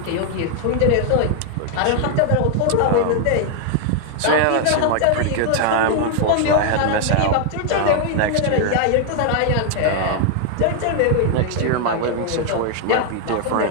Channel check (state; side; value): different; both; correlation 0.00